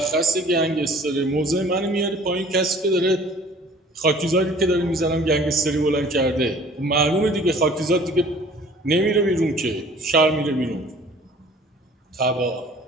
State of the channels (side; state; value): both; normal; correlation 0.51